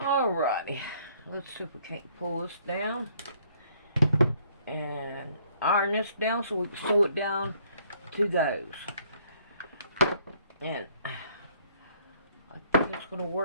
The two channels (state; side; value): inverted; both; correlation -0.64